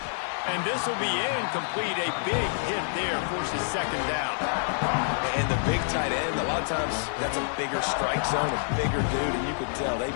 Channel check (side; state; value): right; silent; 58 dB below the other